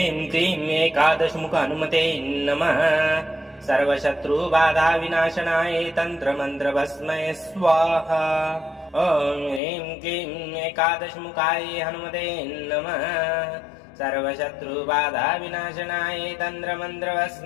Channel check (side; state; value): right; drops out; at 9.6 s